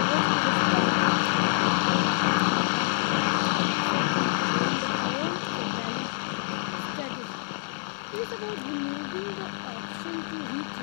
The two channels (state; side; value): silent; right; 60 dB below the other